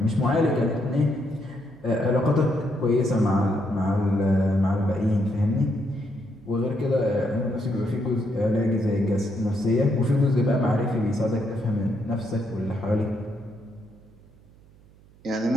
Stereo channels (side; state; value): right; noise; hum, 26 dB below the sound